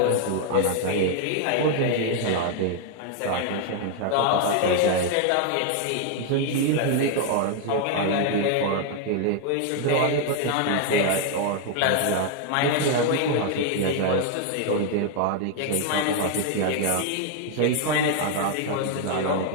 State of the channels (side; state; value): both; different; correlation 0.00